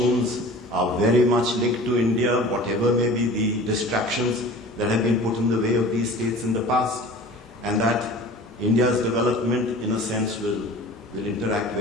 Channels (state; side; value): normal; both; correlation 0.41